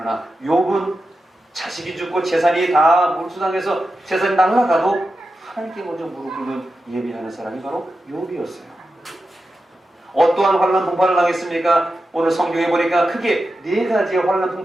욥은 자식이 죽고 재산이 다 몰수당해서 재산이 날아가도 하나님께 먼저 무릎 꿇는 예배하는 사람이 바로 욥이었어요. 어떠한 환난 풍파를 당했습니까? 오늘 성경에 보니까 크게 4가지의 환난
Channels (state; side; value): normal; both; correlation 0.91